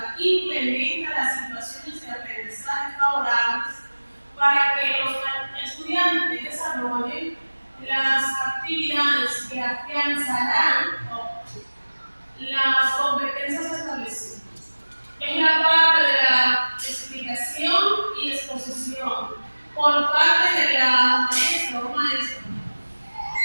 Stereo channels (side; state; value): both; inverted; correlation -1.00